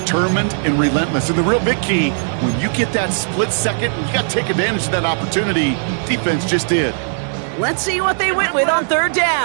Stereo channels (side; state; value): left; silent; digital silence